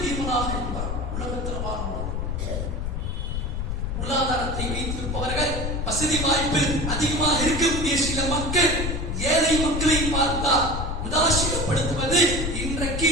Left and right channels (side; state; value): left; noise; rumble, 3 dB below the sound